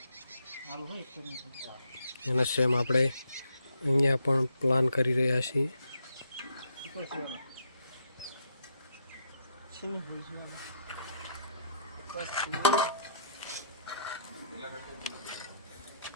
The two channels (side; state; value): both; inverted; correlation -0.73